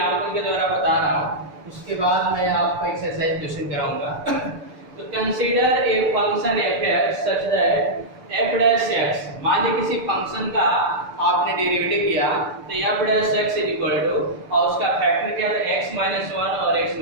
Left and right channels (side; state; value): left; late; 6.8 ms